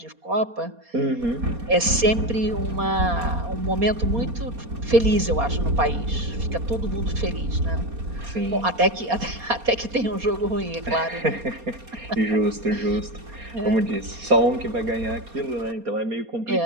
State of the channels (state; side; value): late; left; 4.2 ms